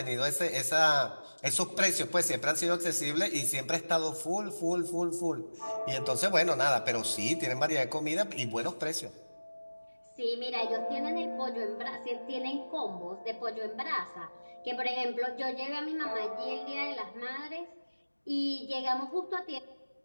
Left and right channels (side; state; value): both; inverted; correlation -1.00